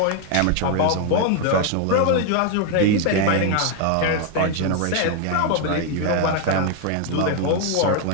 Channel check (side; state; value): both; different; correlation 0.01